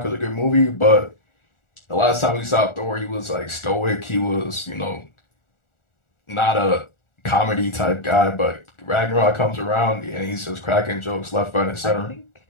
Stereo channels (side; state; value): right; late; 1.4 ms